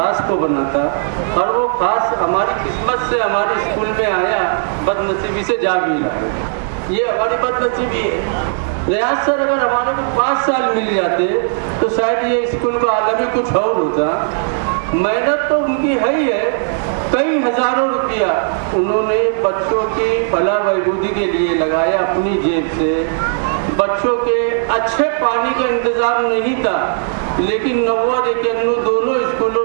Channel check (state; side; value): silent; left; 69 dB below the other